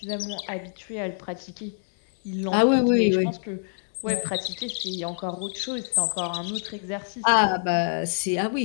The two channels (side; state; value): right; silent; digital silence